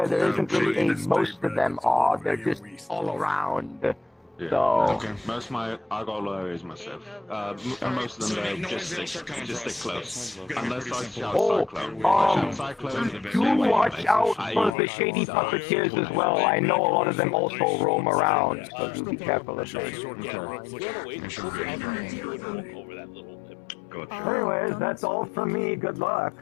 there isn't really any. Most of them are. They're just all around. Yeah. So. Most of I got low areas myself. And most of them just stick close. Unless I shout Cyclone. Do watch out for the shady puppeteers as well. I know a lot of them also roam around, so do be careful of those. Anyways, that's all from me. Good luck.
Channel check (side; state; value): right; drops out; at 14.8 s